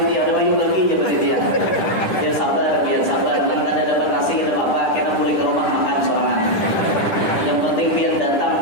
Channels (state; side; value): late; right; 10 ms